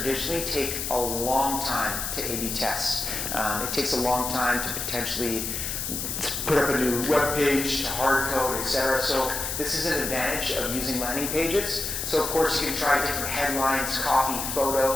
take a long time to A/B test. It takes a long time to potentially put up a new web page, to hard code, etc. So this is an advantage of using landing pages. So of course, you can try different headlines, copy,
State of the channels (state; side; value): noise; left; hiss, 3 dB below the sound